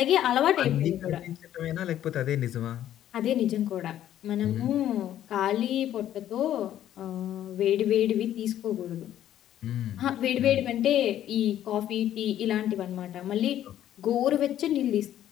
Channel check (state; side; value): quieter; right; 11.7 dB